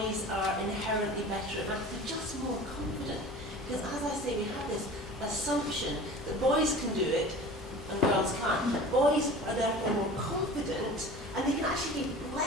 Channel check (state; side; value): normal; both; correlation 0.39